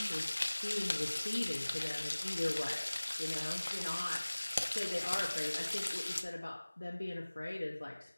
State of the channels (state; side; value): inverted; both; correlation -1.00